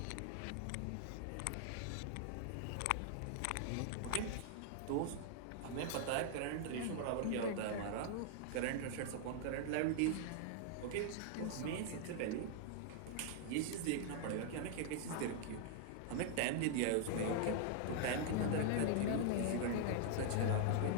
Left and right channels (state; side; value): different; both; correlation 0.00